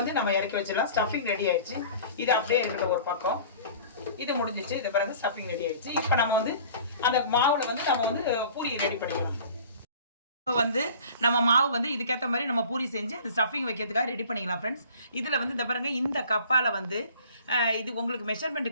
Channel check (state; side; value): inverted; both; correlation -0.45